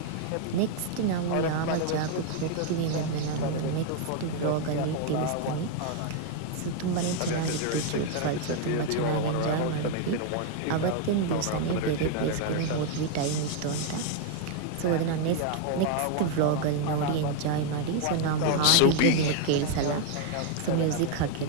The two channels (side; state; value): both; different; correlation 0.00